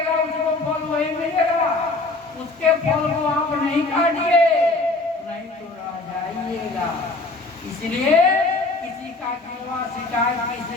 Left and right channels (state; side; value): quieter; right; 3.3 dB